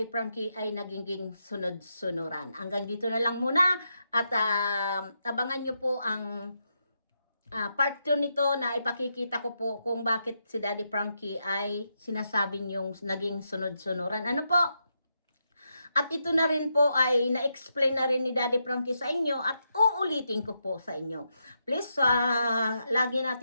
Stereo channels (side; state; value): both; inverted; correlation -0.83